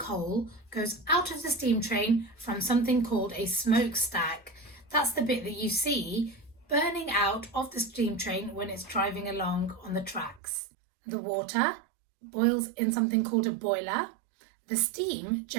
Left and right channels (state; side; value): drops out; left; at 10.4 s